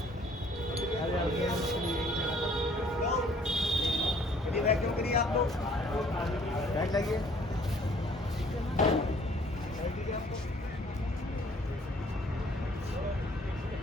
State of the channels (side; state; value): both; normal; correlation 0.58